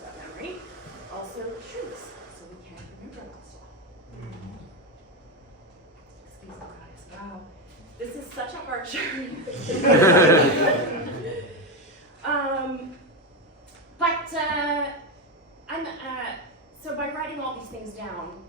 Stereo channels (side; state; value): both; normal; correlation 0.11